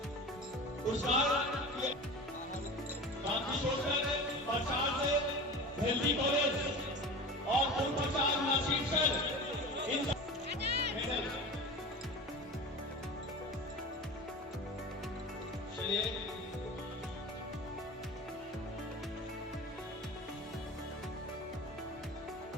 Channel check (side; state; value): both; normal; correlation 0.32